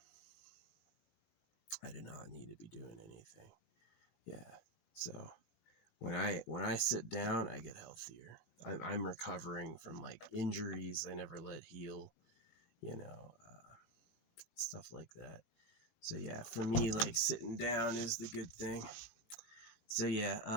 I did not need to be doing anything. Yeah. So when I sit down, I get healthier. I'm recovering from like injuries I never let heal, stuff like that. So yeah, for me, like sitting down is the good thing. So yeah,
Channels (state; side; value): late; right; 18 ms